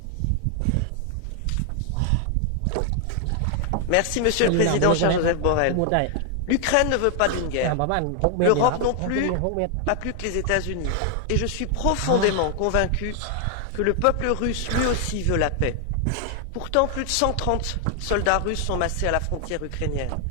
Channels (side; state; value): both; different; correlation 0.00